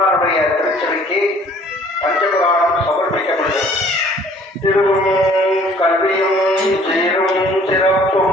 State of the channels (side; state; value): both; normal; correlation 0.55